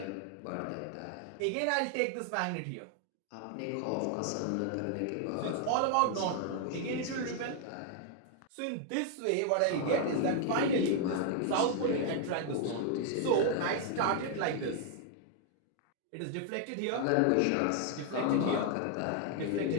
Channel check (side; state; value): both; different; correlation 0.00